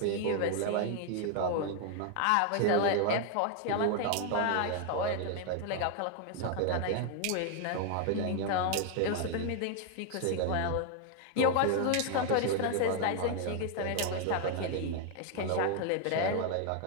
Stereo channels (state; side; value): different; both; correlation 0.00